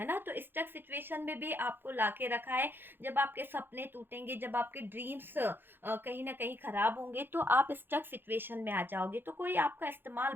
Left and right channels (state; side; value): late; left; 0.10 ms